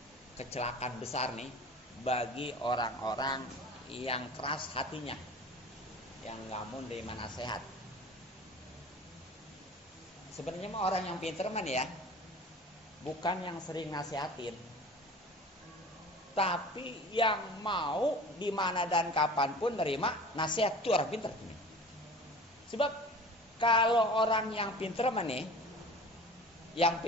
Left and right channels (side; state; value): both; normal; correlation 0.40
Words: kecelakaan besar nih bagi orang-orang yang keras hatinya, yang nggak mau nerima nasihat. Sebenarnya mah orang yang pinter man ya, bukan yang sering nasihatin, tapi yang mau di mana dan kapanpun nerima nasihat, itu orang pinter ini. Sebab kalau orang yang pinter man nih, yang